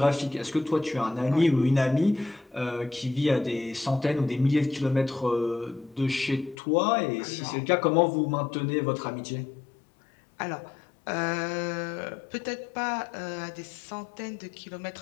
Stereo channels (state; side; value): drops out; right; at 6.6 s